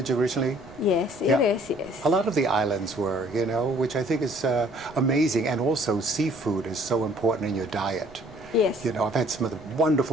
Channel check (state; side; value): noise; right; rumble, 22 dB below the sound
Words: originally? Yes, it is. Yes. A lot of the islands were, you know, which I think is amazing. And also seafood is so important in your diet. Yes. You know, I've had some of the